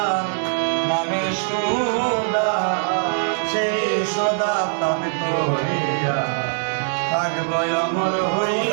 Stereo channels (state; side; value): silent; left; digital silence